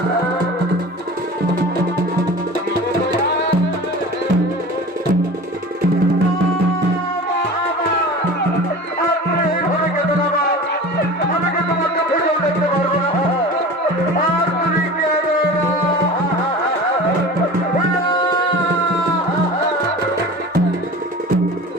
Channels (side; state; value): both; normal; correlation 0.37